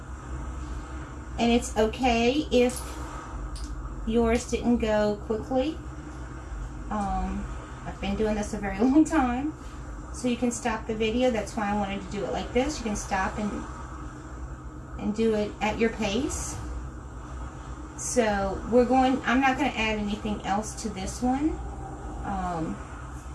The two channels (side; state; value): both; identical; correlation 1.00